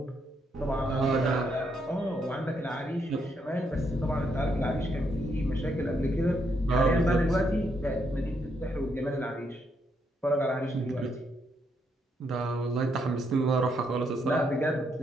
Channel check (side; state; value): both; normal; correlation 0.76